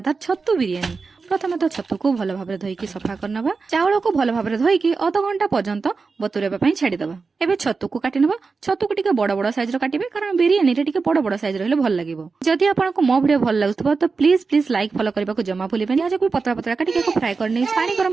छतु बिरियानी। प्रथम तो छतु को भल भाव धोईकी सफा करनबा। चाउल को भल भाव धोईकी अध घंटा पर्यंत बतुरेबा पई छाड़ीदबा। एबे छतु को काटी नबा। छतु को टिके बड़ बड़ साइज रो काटिबे कारण बिरियानी रे टिके बड़ बड़ साइज रहले भल लागिवो। जदि आपनको मो वीडियो भल लागुथबो तो प्लीज प्लीज लाइक फॉलो करबा को जमा भूलिबेनी। आज को पतला पतला काटी के फ्राई करनी। पानी गरम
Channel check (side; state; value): left; quieter; 4.5 dB